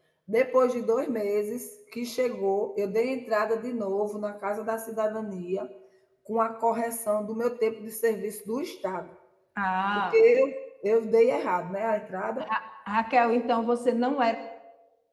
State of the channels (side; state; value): both; identical; correlation 1.00